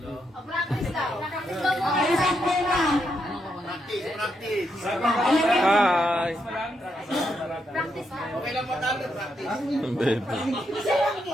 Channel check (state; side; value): normal; both; correlation 0.80